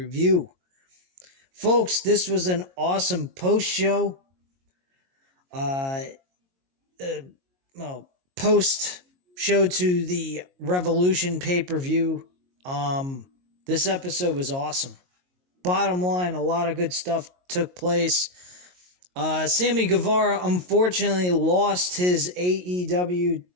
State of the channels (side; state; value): left; late; 22 ms